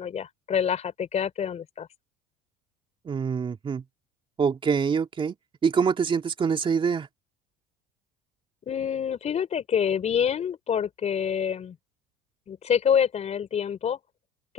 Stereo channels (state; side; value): normal; both; correlation 0.50